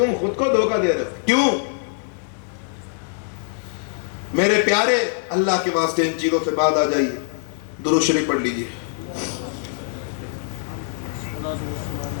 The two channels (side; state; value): right; silent; digital silence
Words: خود کو دھوکہ دے رہے ہو، کیوں؟ میرے پیارے، اللہ کے واسطے ان چیزوں سے بعد آ جائیے، درود شریف پڑھ لیجیے۔